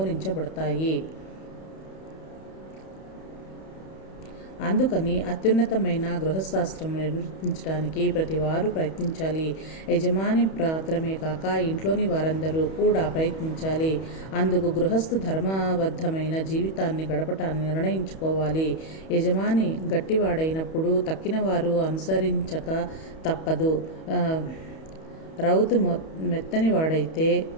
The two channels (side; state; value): right; late; 31 ms